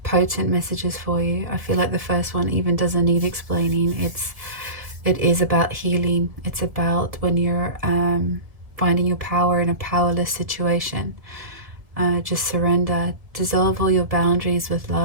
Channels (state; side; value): late; left; 2.0 ms